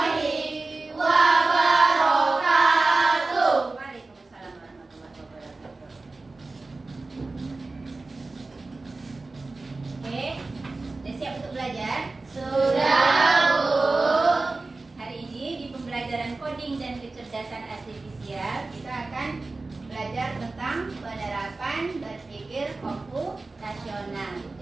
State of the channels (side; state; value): left; quieter; 3.5 dB